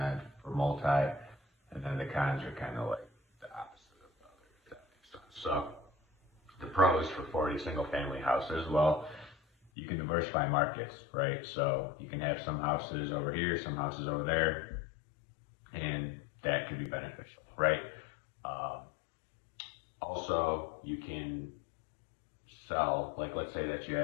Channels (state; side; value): drops out; right; at 9.7 s